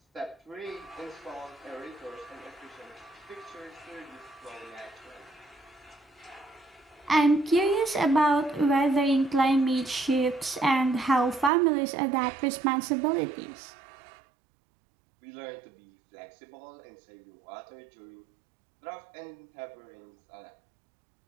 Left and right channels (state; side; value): drops out; left; at 11.5 s